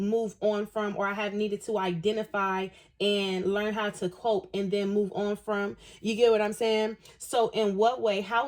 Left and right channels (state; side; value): identical; both; correlation 1.00